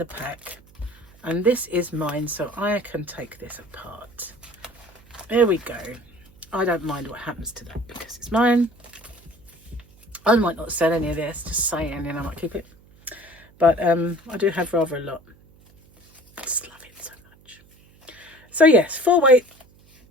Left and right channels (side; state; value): right; noise; hum, 27 dB below the sound